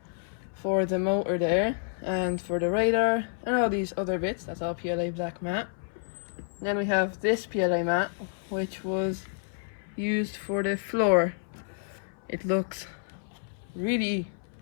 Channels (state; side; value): silent; right; 58 dB below the other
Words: for the motor there and for the radar and all these other bits. That's all PLA Black Matte. Then we have this PLA Matte, which was used for the floor. It looks really